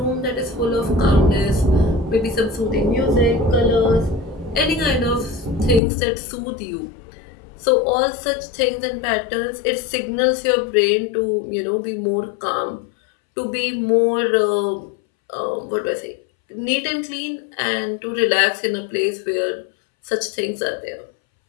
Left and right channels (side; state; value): right; drops out; at 5.8 s